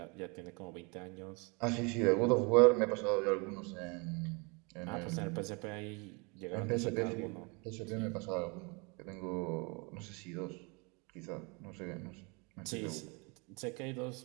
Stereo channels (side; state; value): left; quieter; 30.5 dB